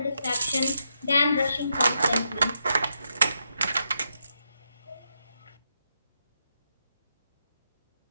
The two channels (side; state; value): both; inverted; correlation -0.82